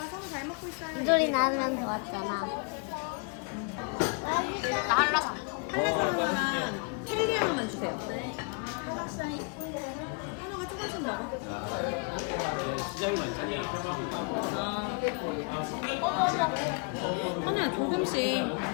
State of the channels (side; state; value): right; quieter; 35.5 dB